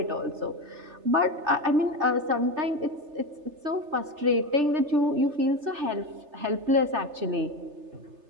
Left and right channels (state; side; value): late; left; 3.3 ms